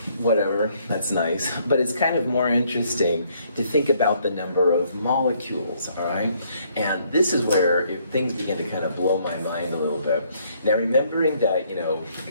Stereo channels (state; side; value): inverted; both; correlation -0.67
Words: whatever, that's nice. But it's kind of more interesting to think about the number of molecules, all right? And this is where things begin to kind of blow my mind a little bit. Now, remembering that, you know, a